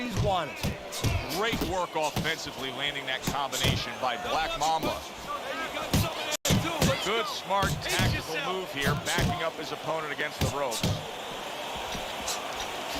wanted. Great work offensively, landing that combination by Black Mamba. Good, smart, tactical move here, backing up his opponent against the ropes.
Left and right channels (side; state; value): both; identical; correlation 1.00